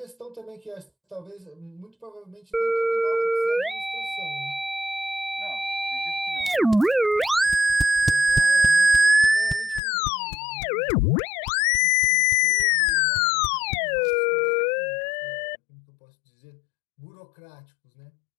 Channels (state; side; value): drops out; right; at 9.8 s